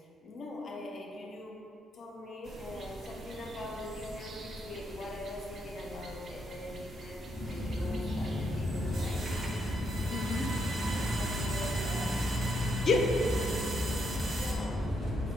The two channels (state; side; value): normal; both; correlation 0.77